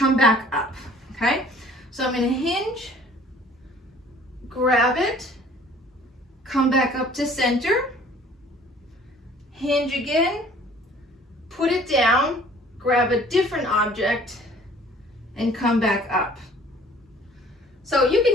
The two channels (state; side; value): normal; both; correlation 0.53